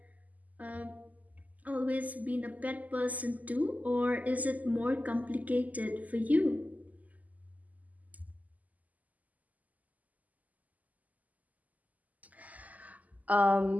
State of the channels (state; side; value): late; left; 0.078 ms